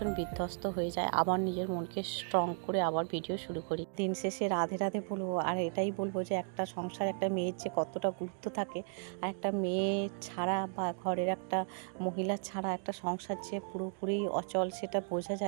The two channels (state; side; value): silent; left; 54 dB below the other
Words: বিধ্বস্ত হয়ে যায়, আবার নিজের মনকে স্ট্রং করে আবার ভিডিও শুরু করি। দিন শেষে রাধে রাধে বলবো, আর এটাই বলবো যে একটা সংসার, একটা মেয়ের যে কতটা গুরুত্ব থাকে, আর একটা মেয়ে ছাড়া বা ঘরের একটা মহিলা ছাড়া একটা সংসার যে পুরোপুরি অচল, সেটা বোঝা